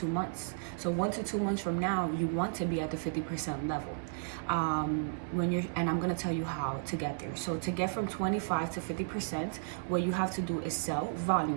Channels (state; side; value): silent; left; 55 dB below the other